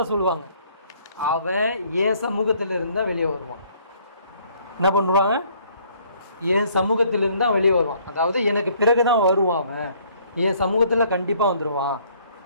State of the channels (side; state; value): both; inverted; correlation -0.62